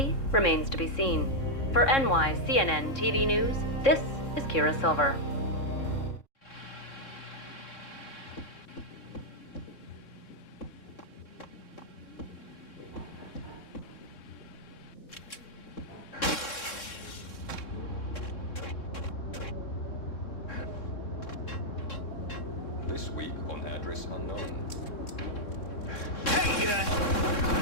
remains to be seen. For NYCNN TV News, this is Kira Silver. This week on address unknown. Hey,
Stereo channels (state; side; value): late; right; 3.6 ms